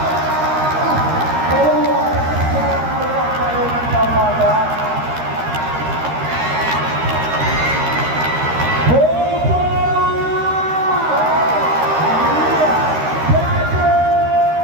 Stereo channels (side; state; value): left; late; 13 ms